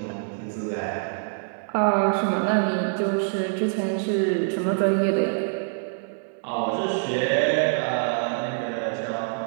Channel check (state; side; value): silent; left; digital silence